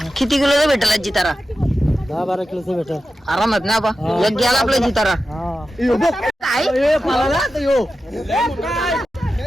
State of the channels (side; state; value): both; normal; correlation 0.92